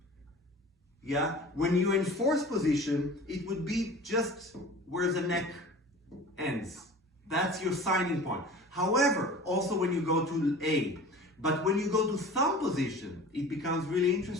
Yeah? When you're in fourth position, it would be just where the neck ends. That's your signing point. However, also when you go to A, but when you go to thumb position, it becomes really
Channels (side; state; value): both; normal; correlation 0.40